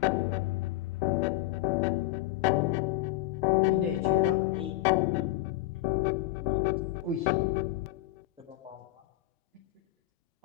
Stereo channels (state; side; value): quieter; right; 16.3 dB